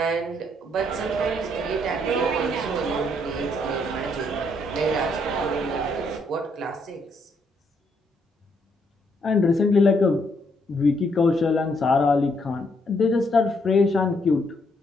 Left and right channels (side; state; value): both; normal; correlation 0.73